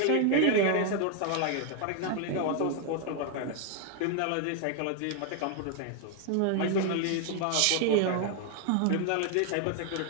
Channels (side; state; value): both; different; correlation 0.00